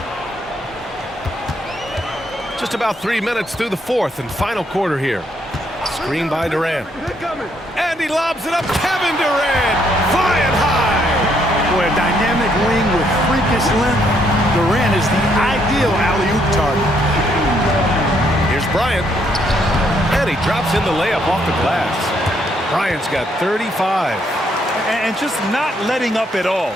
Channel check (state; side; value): normal; both; correlation 0.72